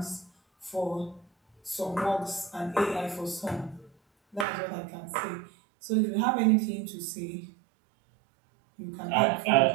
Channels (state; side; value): drops out; left; at 4.5 s